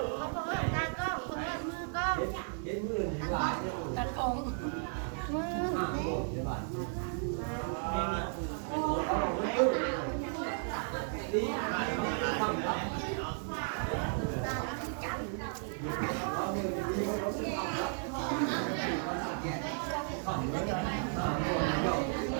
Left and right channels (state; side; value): silent; left; 55 dB below the other